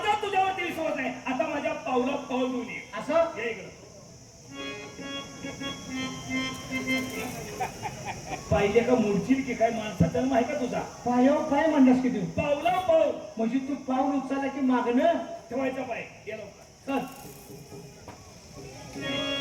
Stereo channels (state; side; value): identical; both; correlation 1.00